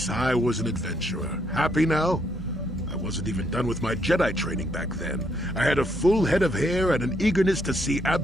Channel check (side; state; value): both; normal; correlation 0.73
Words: I was an adventurer. Happy now? I wasn't even done with my Jedi training back then. I had a full head of hair and an eagerness to see